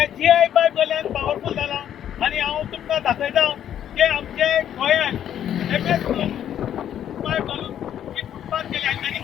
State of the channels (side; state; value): right; quieter; 10.2 dB